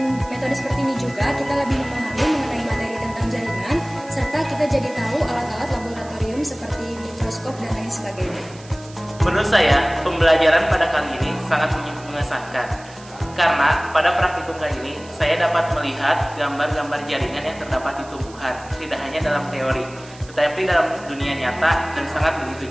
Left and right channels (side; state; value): right; noise; hiss, 21 dB below the sound